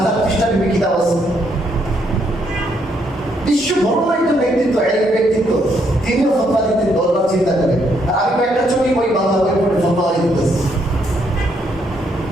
পৃষ্ঠা কিতাব আছে। বিশ্ব বড় একজন ব্যক্তিত্ব, এক ব্যক্তিত্ব, তিনিও ফতোয়া দিতে দরবার চিন্তা করেন। আর আমি কয়েকটা ছোট বই বাংলা বই পড়ে ফতোয়া দিতেছি।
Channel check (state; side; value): normal; both; correlation 0.73